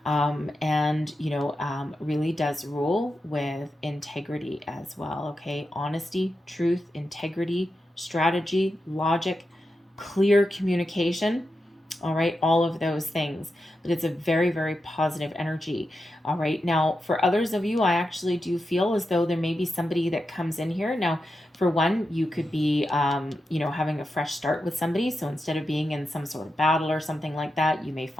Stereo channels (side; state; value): both; normal; correlation 0.89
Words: and really does rule with integrity as well. Okay, honesty, truth, integrity, strategy, logic, clear communication. All right, all of those things, but it's a very, very positive energy. All right, now for others of you, I actually do feel as though there may be somebody that comes in here now. For one, you could be, having a fresh start with somebody. So instead of being in some sort of battle or something like that, you may